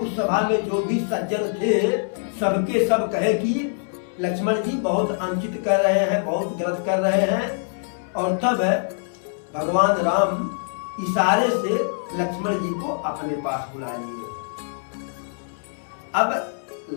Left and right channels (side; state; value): right; silent; digital silence